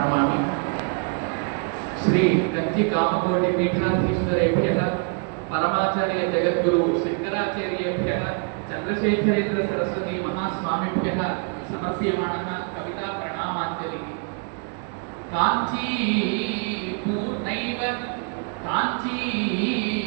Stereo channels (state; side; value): quieter; left; 39.6 dB